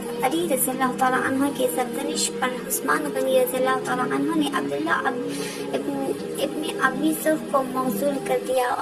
अली रज़ियल्लाहु तआला अन्हु के सरजनिश पर उस्मान गनी रज़ियल्लाहु तआला अन्हु ने अब्दुल्ला इब्न अबी सरह को मगसूल कर दिया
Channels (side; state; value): both; identical; correlation 1.00